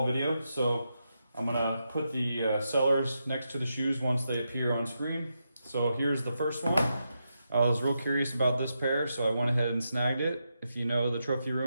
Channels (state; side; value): inverted; both; correlation -0.85